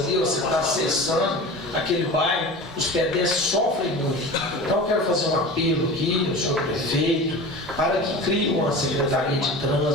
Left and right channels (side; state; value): both; normal; correlation 0.34